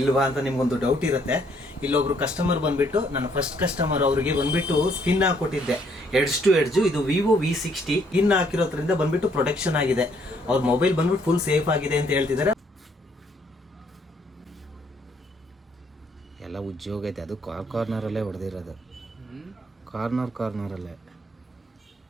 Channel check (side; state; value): both; normal; correlation 0.67